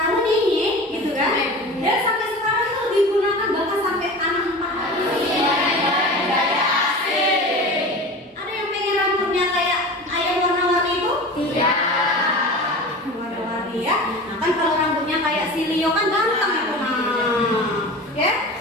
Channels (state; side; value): normal; both; correlation 0.34